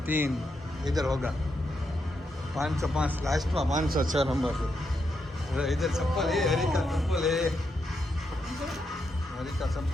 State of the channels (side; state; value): both; normal; correlation 0.82